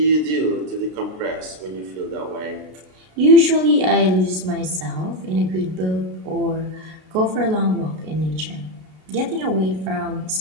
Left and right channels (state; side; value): late; left; 33 ms